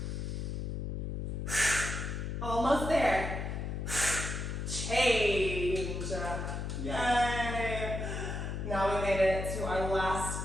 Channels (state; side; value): noise; left; hum, 3 dB below the sound